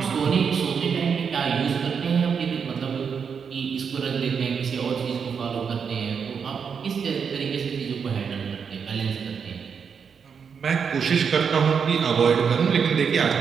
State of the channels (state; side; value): quieter; left; 6.5 dB